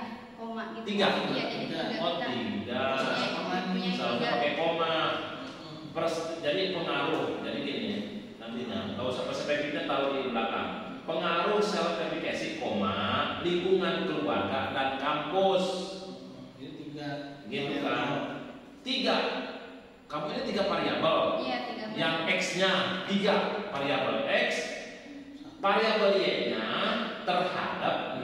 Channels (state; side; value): identical; both; correlation 1.00